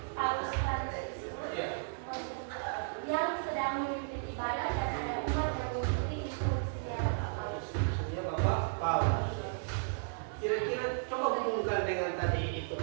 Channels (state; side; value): silent; left; 55 dB below the other